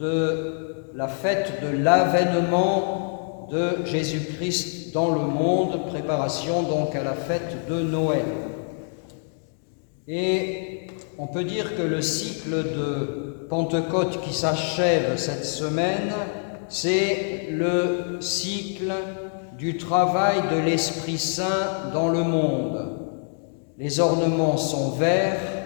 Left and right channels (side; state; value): right; silent; 62 dB below the other